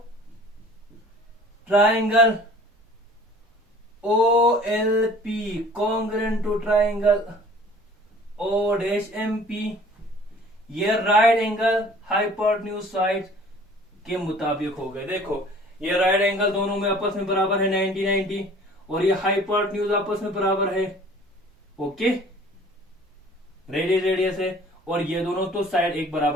triangle O L P congruent to triangle O dash M P, ये राइट एंगल हाइपोटेन्यूज साइड के मुताबिक हो गए। देखो ये राइट एंगल दोनों में आपस में बराबर है 90-90, और ये हाइपोटेन्यूज आपस में बराबर है, ओके, रेडियस है, और ये दोनों तो साइड एक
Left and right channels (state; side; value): normal; both; correlation 0.49